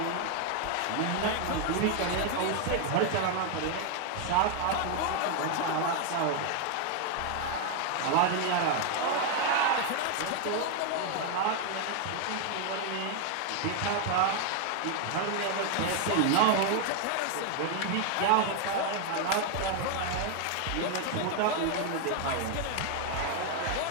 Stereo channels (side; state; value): both; different; correlation 0.00